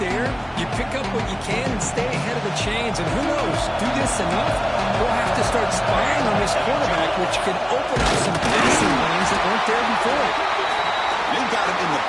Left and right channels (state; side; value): identical; both; correlation 1.00